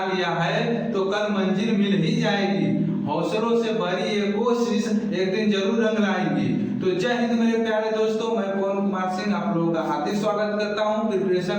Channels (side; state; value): both; identical; correlation 1.00